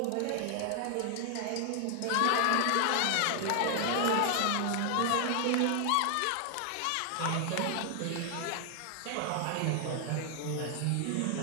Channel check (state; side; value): different; both; correlation 0.00